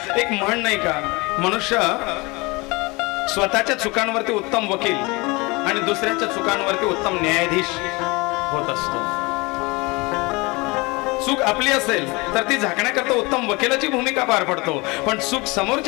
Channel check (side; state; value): right; quieter; 25.5 dB